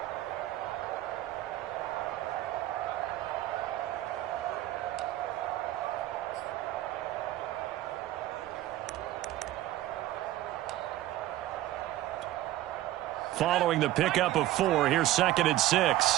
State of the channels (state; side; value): quieter; left; 15.0 dB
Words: Following the pickup of 4, here's 2nd and